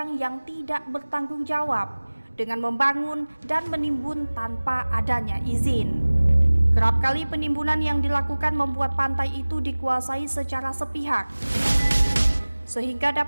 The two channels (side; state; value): both; inverted; correlation -1.00